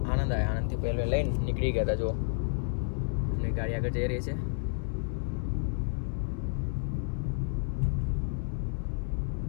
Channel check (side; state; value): right; silent; 57 dB below the other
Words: આણંદ આવ્યા. આણંદથી પહેલાં લઈને નીકળી ગયા હતા. જો એમની ગાડી આગળ જઈ રહી છે.